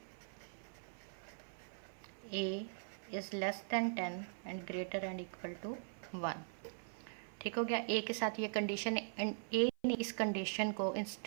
a is less than 10 and greater and equal to 1। ठीक हो गया। ए के साथ ये कंडीशन एंड ए ने इस कंडीशन को इन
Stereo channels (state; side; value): silent; left; 50 dB below the other